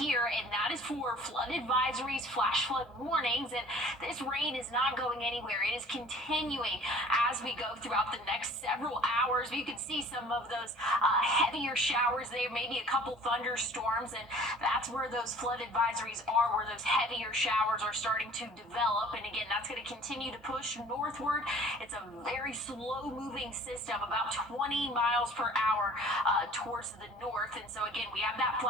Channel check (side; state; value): both; normal; correlation 0.49